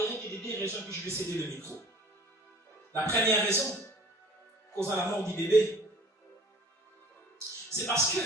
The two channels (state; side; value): normal; both; correlation 0.48